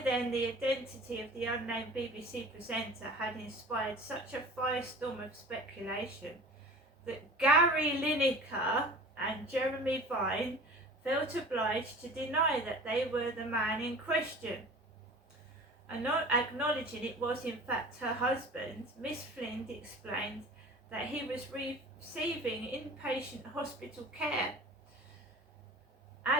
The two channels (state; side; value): normal; both; correlation 0.40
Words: then, the identity of the unnamed BBC presenter had inspired such a firestorm of speculation that Gary Lineker and Jeremy Vine felt obliged to deny that they were the man in question. And not acknowledging it was in fact her husband, Miss Flynn explained that he was receiving inpatient hospital care,